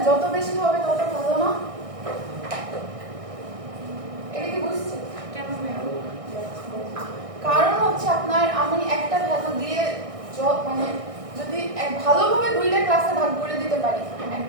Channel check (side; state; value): left; late; 1.6 ms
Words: যত বেশি হবে তত ভালো না এটা কি বুঝছেন কারণ হচ্ছে আপনার আমি একটা ভ্যালু দিয়ে মানে যদি ভালোভাবে দুইটা ক্লাসে ভাগ করে দিতে পারি